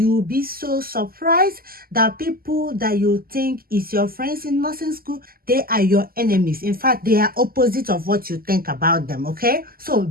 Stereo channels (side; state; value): left; late; 0.42 ms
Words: be so surprised that people that you think is your friends in nursing school, they are your enemies. In fact, they are opposite of what you think about them, okay? So